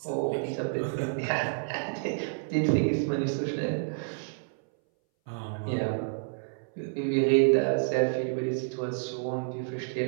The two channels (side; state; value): left; silent; 58 dB below the other